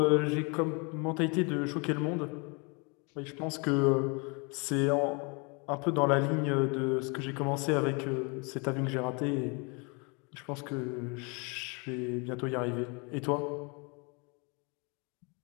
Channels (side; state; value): right; quieter; 31.9 dB